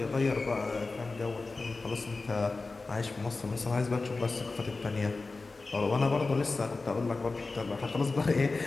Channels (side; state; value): right; quieter; 3.7 dB